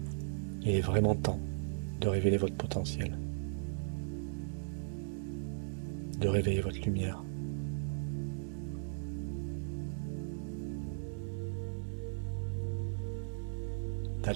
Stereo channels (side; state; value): left; silent; digital silence